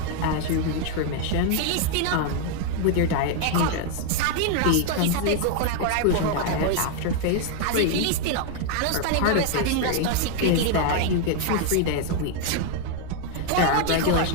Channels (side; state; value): both; different; correlation 0.00